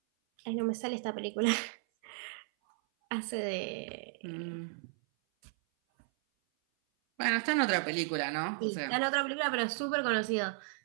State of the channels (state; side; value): silent; left; 55 dB below the other